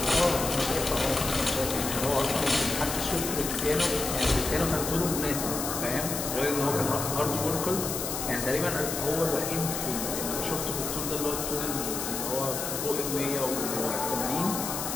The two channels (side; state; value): left; noise; hiss, 4 dB below the sound